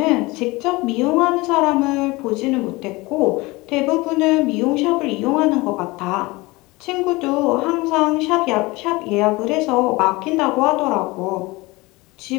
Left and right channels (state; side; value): quieter; right; 22.5 dB